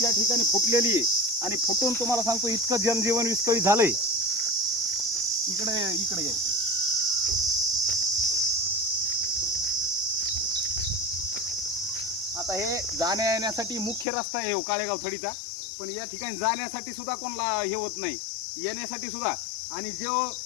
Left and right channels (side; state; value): right; drops out; at 14.1 s